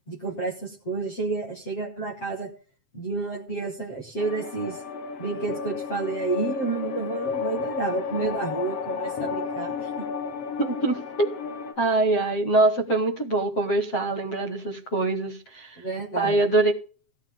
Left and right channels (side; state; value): right; late; 7.6 ms